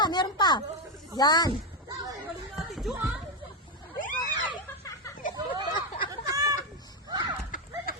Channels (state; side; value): normal; both; correlation 0.07